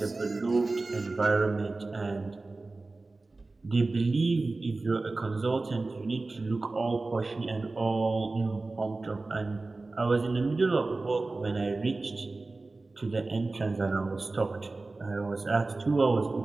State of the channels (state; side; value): quieter; left; 3.4 dB